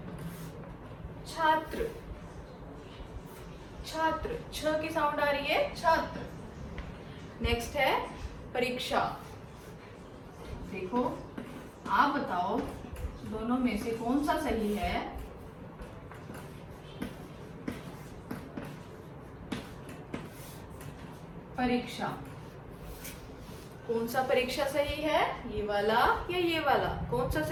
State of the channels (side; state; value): both; identical; correlation 1.00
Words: छात्र, छात्र। छ की साउंड आ रही है, छात्र। नेक्स्ट है परीक्षा। देखो आप बताओ दोनों में से कौन सा सही है। परीक्षा, कौन सा परीक्षा सही है, ये वाला या ये वाला, कौन सा